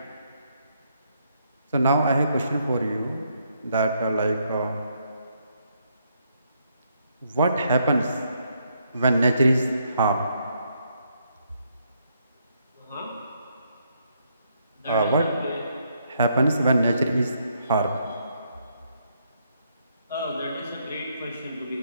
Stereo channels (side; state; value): both; inverted; correlation -0.74